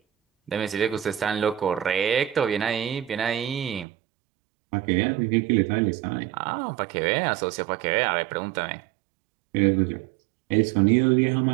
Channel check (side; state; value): left; drops out; at 3.9 s